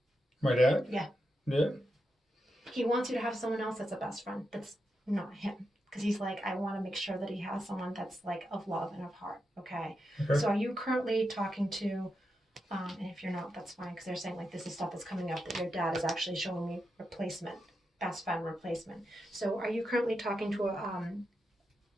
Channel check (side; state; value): both; normal; correlation 0.86